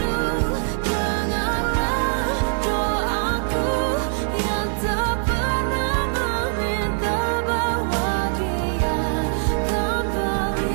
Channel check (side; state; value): left; silent; digital silence